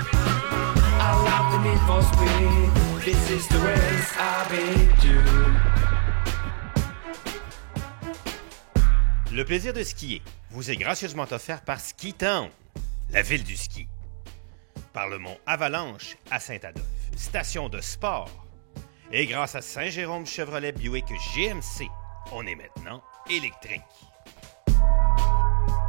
I love the need for speed. This is the race I've been due. Le plaisir de skier vous est gracieusement offert par Ski Town, la ville du ski. Par le mont Avalanche à Saint-Adolphe, station de sport. Et grâce à Saint-Jérôme Chevrolet Buick GMC, on est maintenant électrique.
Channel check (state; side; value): silent; left; digital silence